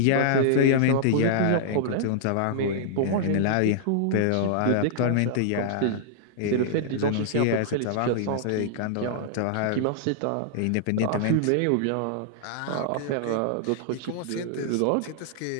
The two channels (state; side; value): different; both; correlation -0.01